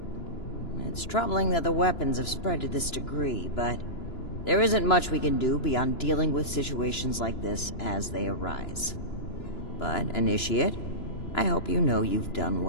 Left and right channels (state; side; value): late; right; 2.9 ms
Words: It's troubling that the weapons have spread to this degree, but there isn't much we can do beyond dealing with situations like this as they arise. But, Initiate, I hope you know you've done